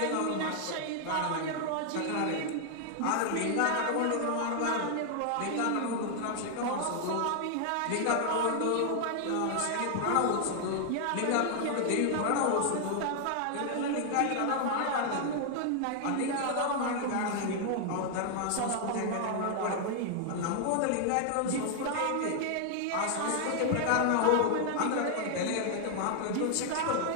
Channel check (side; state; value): both; different; correlation 0.00